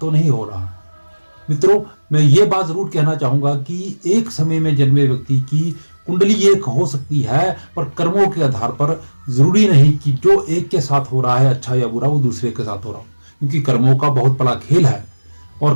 नहीं हो रहा। मित्रों, मैं ये बात जरूर कहना चाहूंगा कि एक समय में जन्मे व्यक्ति की कुंडली एक हो सकती है, पर कर्मों के आधार पर जरूरी नहीं कि जो एक के साथ हो रहा है अच्छा या बुरा वो दूसरे के साथ हो रहा हो, क्योंकि कर्मों का बहुत बड़ा खेल है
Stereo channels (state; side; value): inverted; both; correlation -1.00